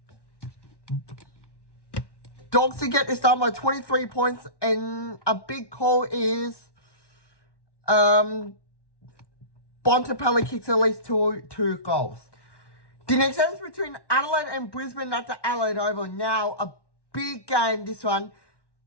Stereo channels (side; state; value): right; late; 1.1 ms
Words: Dogs to get this done by 23 points, and a big call is Bontempelli kicks at least two goals. The next game is between Adelaide and Brisbane at the Adelaide Oval. Now, a big game, this one.